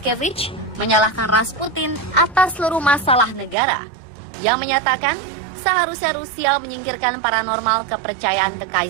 menyalahkan Rasputin atas seluruh masalah negara. Yang menyatakan seharusnya Rusia menyingkirkan paranormal kepercayaan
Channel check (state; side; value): drops out; left; at 3.6 s